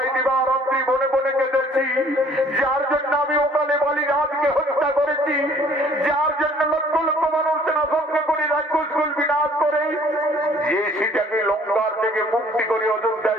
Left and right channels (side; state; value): both; normal; correlation 0.56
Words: দিবারাত্রি বনে বনে কেঁদেছি, যার জন্য আমি ওকালে বালি রাজকে হত্যা করেছি, যার জন্য লক্ষ লক্ষ মানুষ সেনা সঙ্গে করে রাক্ষসকুল বিনাশ করে যে সীতাকে লঙ্কার থেকে মুক্তি করে